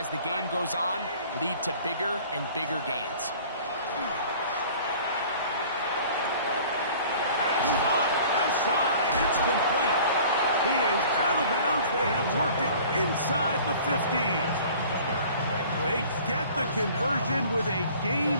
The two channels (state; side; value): inverted; both; correlation -0.48